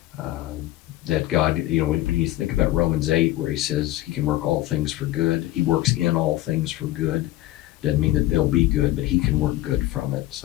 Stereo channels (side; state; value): right; quieter; 15.7 dB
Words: that God, when you think about Romans 8, where he says he can work all things for good, he works in all things for good. Doesn't mean that they'll be good, but he can work good from it.